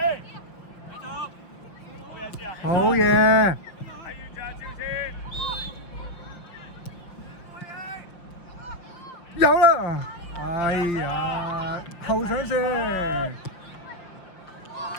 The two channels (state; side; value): late; right; 5.9 ms